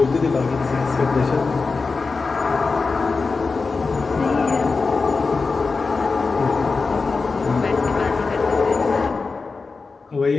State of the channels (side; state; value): right; quieter; 4.3 dB